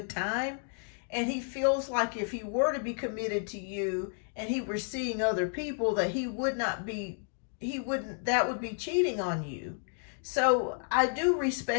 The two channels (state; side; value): silent; right; 56 dB below the other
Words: time. And he feels like if he were to be committed to you and he were seeing other people, that that would be cheating on you. So I do